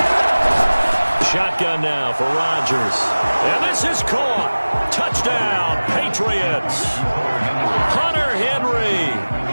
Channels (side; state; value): both; inverted; correlation -1.00